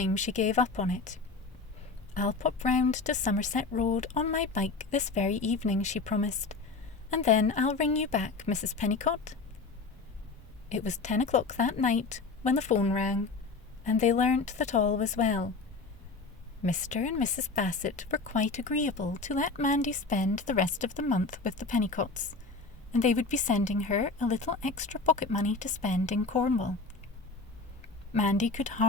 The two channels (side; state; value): right; quieter; 4.0 dB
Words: she gave up on it. I'll pop round to Somerset Road on my bike this very evening, she promised, and then I'll ring you back, Mrs. Pennycott. It was 10 o'clock that night when the phone rang, and they learnt that all was well. Mr. and Mrs. Bassett were quite agreeable to let Mandy spend the rest of the month with the Pennycotts, and they would be sending her a little extra pocket money to spend in Cornwall. Mandy could